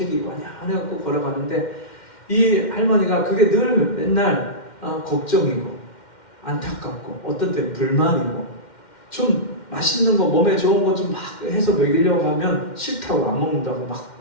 완연해갖고 걸어가는데 이 할머니가 그게 늘 맨날 걱정이고 안타깝고 어떤 때는 불만이고 좀 맛있는 거 몸에 좋은 거 좀 막 해서 먹이려고 하면 싫다고 안 먹는다고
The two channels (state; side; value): late; right; 2.1 ms